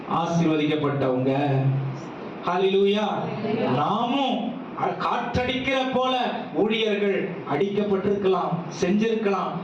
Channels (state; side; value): identical; both; correlation 1.00